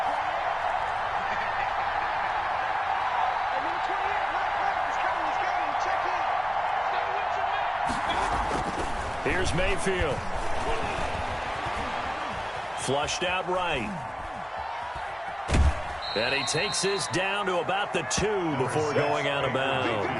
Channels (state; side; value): identical; both; correlation 1.00